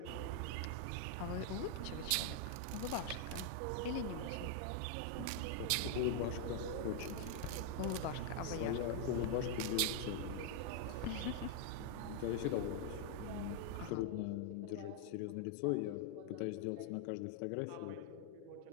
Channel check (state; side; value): different; both; correlation 0.00